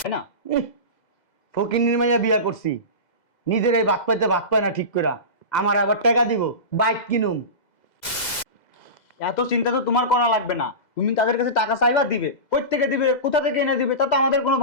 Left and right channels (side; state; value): right; late; 2.0 ms